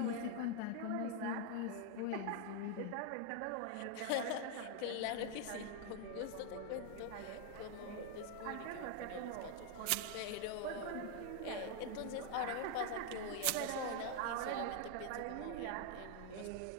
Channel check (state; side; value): different; both; correlation 0.00